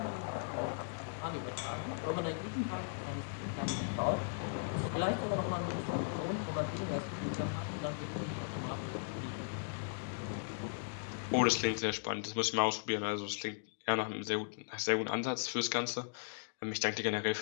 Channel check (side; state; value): right; silent; digital silence